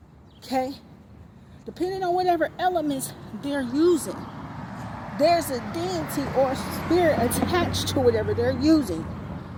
Okay? Depending on whatever elements they're using, there's a deity or spirit attached to whatever they're using.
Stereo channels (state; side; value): identical; both; correlation 1.00